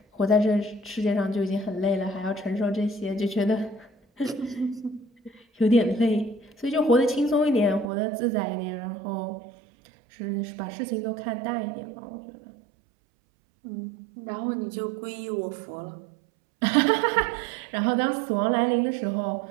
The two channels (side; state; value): left; drops out; at 7.9 s